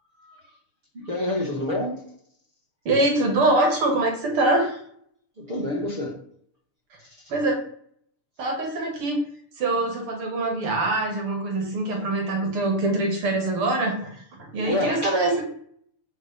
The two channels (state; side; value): late; left; 6.8 ms